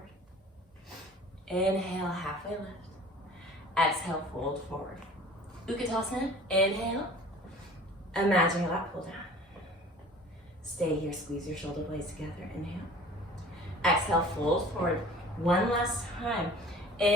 Inhale. Halfway lift. Exhale. Fold forward. Utkatasana. Inhale. Imagine your lap pull down. Stay here. Squeeze your shoulder blades together. Inhale. Exhale. Fold forward. One last time.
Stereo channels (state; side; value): normal; both; correlation 0.45